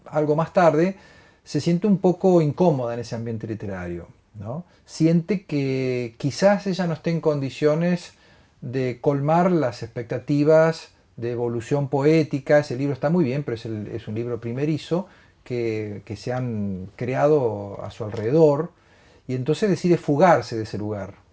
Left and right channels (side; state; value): both; identical; correlation 1.00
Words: algo más tarde, se siente un poco incómoda en ese ambiente literario, ¿no? Siente que quizás ella no esté en condiciones de colmar las expectativas de evolución poética. Ese libro está muy bien, pero es un libro primerizo que se han creado a su alrededor, y entonces decide fugarse de ese lugar.